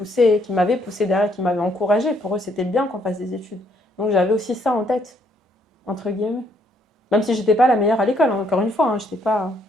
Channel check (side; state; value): both; normal; correlation 0.69